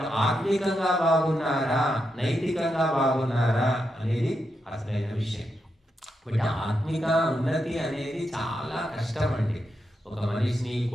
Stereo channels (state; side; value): normal; both; correlation 0.84